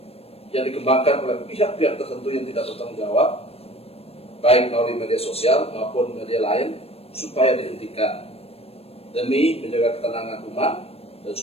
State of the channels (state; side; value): late; right; 0.29 ms